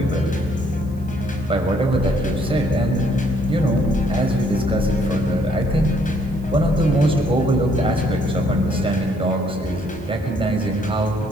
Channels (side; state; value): right; noise; hiss, 29 dB below the sound